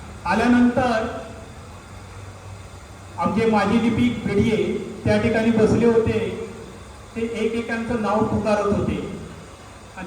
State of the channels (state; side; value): identical; both; correlation 1.00